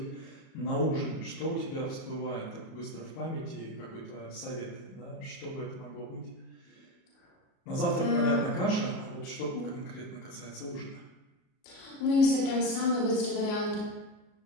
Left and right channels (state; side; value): late; right; 37 ms